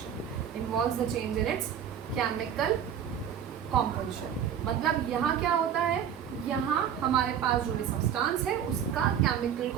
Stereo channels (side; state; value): left; quieter; 8.9 dB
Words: Involves the change in its chemical composition. मतलब यहाँ क्या होता है, यहाँ हमारे पास जो भी सब्सटेंस है उसका केमिकल